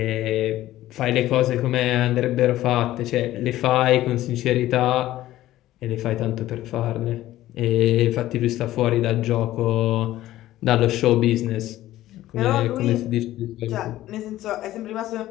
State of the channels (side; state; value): right; quieter; 14.8 dB